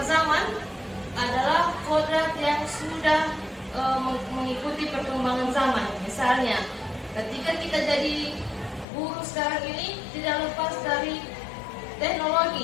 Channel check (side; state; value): right; drops out; at 8.8 s